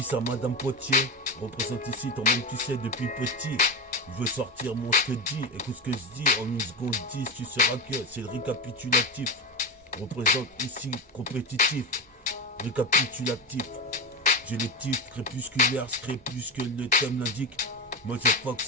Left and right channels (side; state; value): both; normal; correlation 0.16